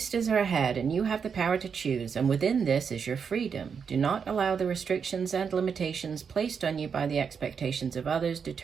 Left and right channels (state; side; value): quieter; left; 6.4 dB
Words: are ahead, and you have the power to choose, and within this is your freedom. Do not allow the restrictions and limitations placed on you by the expectations of others